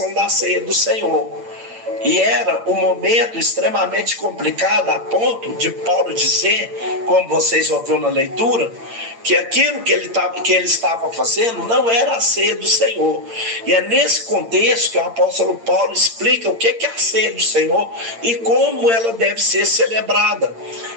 da ceia do Senhor. E era um momento extremamente complicado, a ponto de Paulo dizer, como vocês ouviram na leitura, que aquilo que ele estava fazendo não era a ceia do Senhor. E é nesse contexto que o apóstolo Paulo explica o que é a ceia do Senhor e como ela deve ser celebrada.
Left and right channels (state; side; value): late; left; 8.8 ms